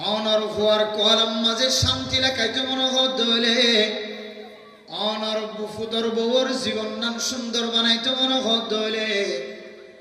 অনর ফুয়ার কলম মাঝে শান্তি লেখাইতে মনে হলে অনর ফুতর বউর জীবন নাম সুন্দর বানাইতে মনে হলে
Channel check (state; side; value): identical; both; correlation 1.00